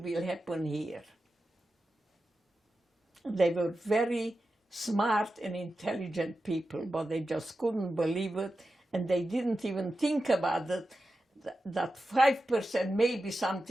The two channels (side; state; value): both; normal; correlation 0.91